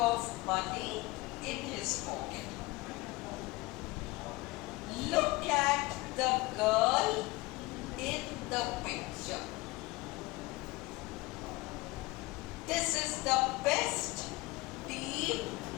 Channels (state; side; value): quieter; right; 21.9 dB